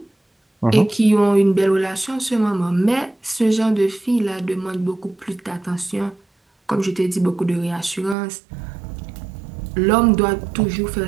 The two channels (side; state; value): left; drops out; at 8.2 s